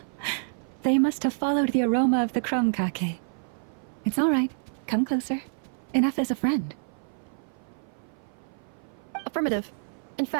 They must have followed the aroma of the krumkake. It's all right. Come closer. Enough as a friend. Affirmative. In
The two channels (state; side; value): silent; left; 56 dB below the other